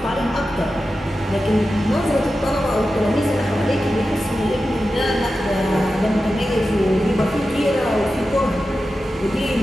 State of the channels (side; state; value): both; normal; correlation 0.92